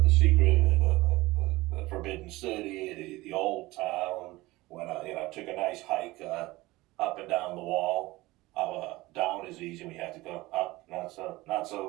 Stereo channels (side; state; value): left; quieter; 19.8 dB